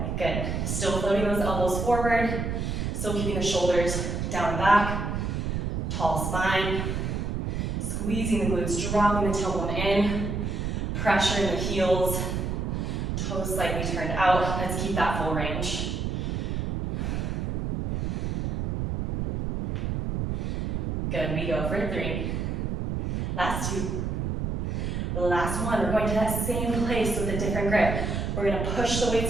Good. Still floating those elbows forward. Still keeping the shoulders down and back. Tall spine. Squeezing the glutes, dropping the tailbone in. Pressure in the heels. Toes slightly turned out. Let's keep that full range. Good, we go for 3. Last 2. The last 1, we're going to that same place with a different grip. We're gonna push the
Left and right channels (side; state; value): right; noise; rumble, 1 dB below the sound